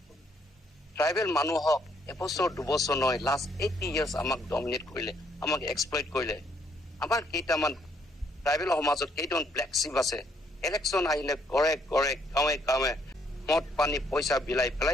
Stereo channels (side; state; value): both; normal; correlation 0.69